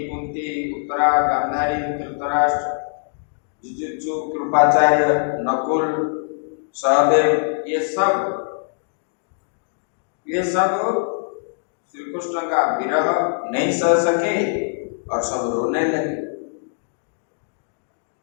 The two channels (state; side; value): silent; right; digital silence